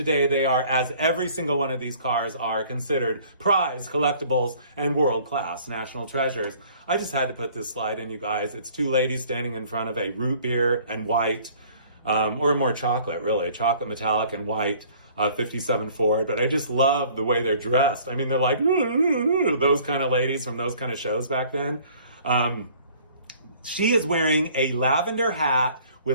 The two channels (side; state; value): both; inverted; correlation -0.54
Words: they are, as every single one of these cars are, considered prize collectibles and world-class national treasures. I just had to put this slide in, you guys. It's two ladies standing in front of a root beer and white, or more chocolate, really, chocolate metallic and white 57 Ford. But I just love the way they're dressed. I mean, they're like those kind of ladies from those kind of shows back then. She is wearing a lavender hat